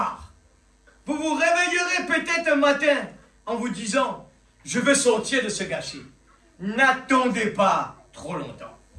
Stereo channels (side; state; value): both; identical; correlation 1.00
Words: Vous vous réveillerez peut-être un matin en vous disant, je veux sortir de ce gâchis. N'attendez pas trop longtemps.